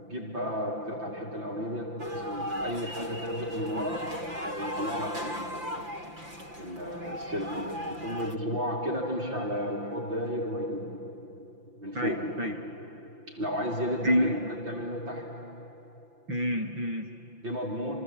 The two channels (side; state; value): left; late; 5.9 ms